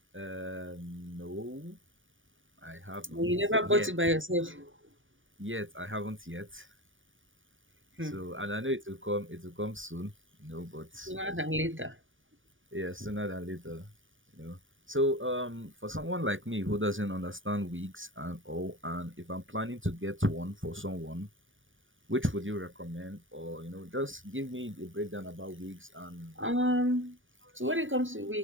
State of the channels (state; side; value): late; left; 0.57 ms